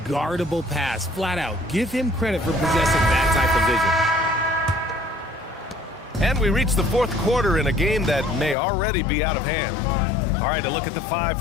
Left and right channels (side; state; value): right; drops out; at 8.6 s